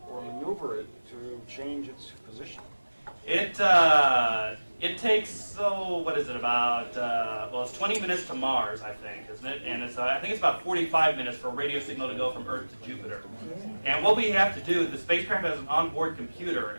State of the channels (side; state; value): both; inverted; correlation -1.00